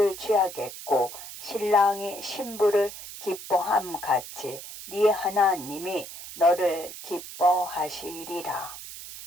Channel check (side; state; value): right; noise; hiss, 12 dB below the sound